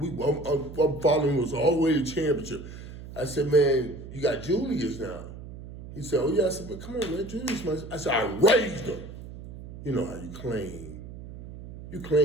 following us all the way to championship. I said, man, you got Julius now. He said, oh yeah. I said, man, come on, man, Julius. I said, I raised him. You know how you claim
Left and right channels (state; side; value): noise; right; hum, 13 dB below the sound